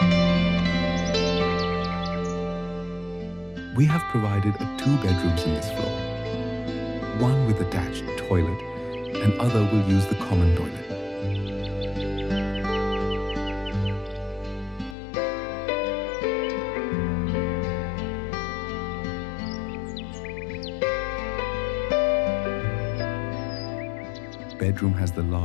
We have provided 2 bedrooms in this floor. One with attached toilet and other will use the common toilet. bedroom has the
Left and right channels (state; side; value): drops out; right; at 15.0 s